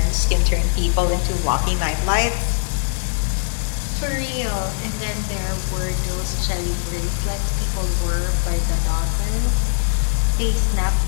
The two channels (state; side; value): silent; right; 65 dB below the other